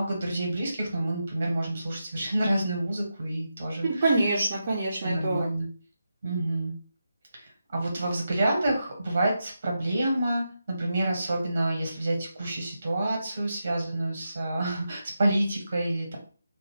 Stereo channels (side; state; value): both; inverted; correlation -0.88